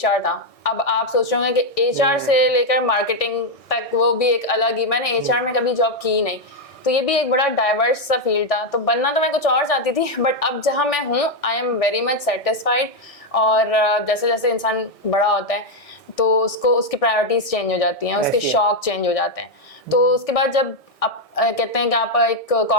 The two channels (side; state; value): right; late; 1.6 ms